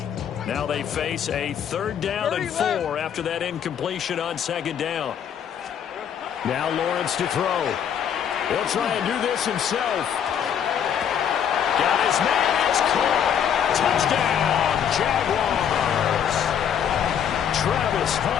Now they face a 3rd down and 4 after that incompletion on 2nd down. Now Lawrence to throw. He'll try and do this himself. Got his man, it's caught. Touchdown, Jaguars. Travis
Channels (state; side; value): quieter; right; 8.6 dB